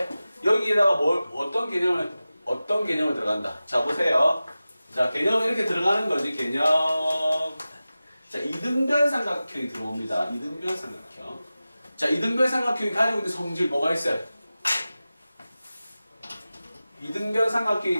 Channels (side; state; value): both; inverted; correlation -0.95